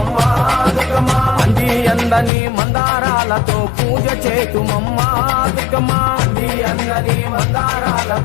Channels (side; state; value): right; drops out; at 2.3 s